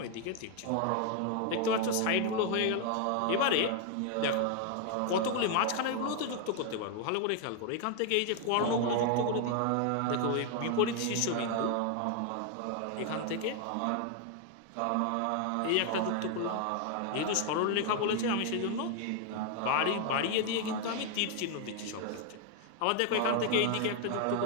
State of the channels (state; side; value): different; both; correlation 0.00